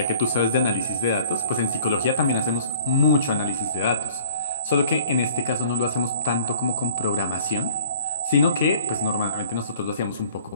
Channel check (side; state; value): both; inverted; correlation -0.52